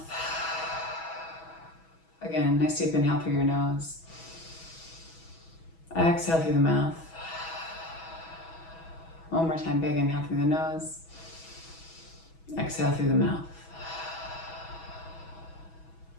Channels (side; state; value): right; late; 6.2 ms